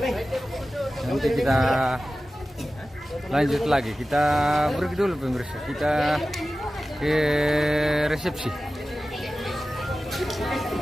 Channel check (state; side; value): normal; both; correlation 0.95